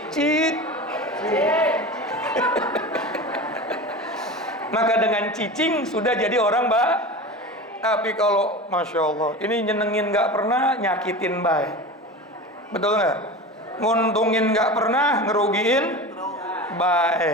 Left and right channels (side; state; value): both; normal; correlation 0.30